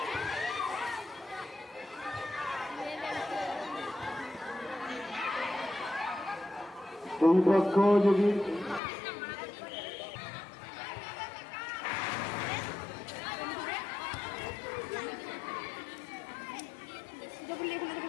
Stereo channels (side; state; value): right; drops out; at 8.8 s